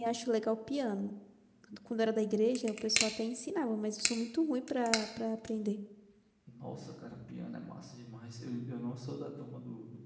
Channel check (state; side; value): identical; both; correlation 1.00